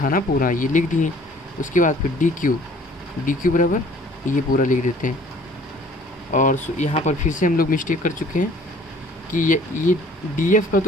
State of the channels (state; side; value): normal; both; correlation 0.54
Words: ना पूरा, ये लिख दिए। उसके बाद फिर डी क्यू बराबर ये पूरा लिख देते हैं। और यहाँ पर फिर से हम लोग मिस्टेक कर चुके हैं कि ये डी एफ का